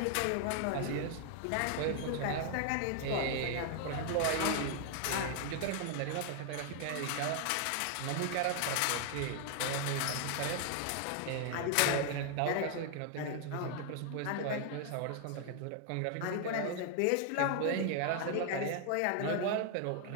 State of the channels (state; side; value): different; both; correlation 0.00